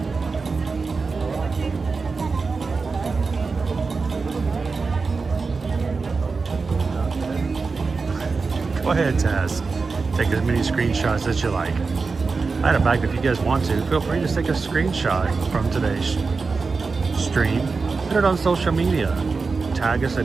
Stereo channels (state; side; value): quieter; left; 4.4 dB